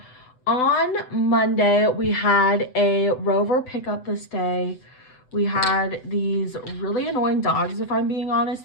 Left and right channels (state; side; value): late; right; 7.9 ms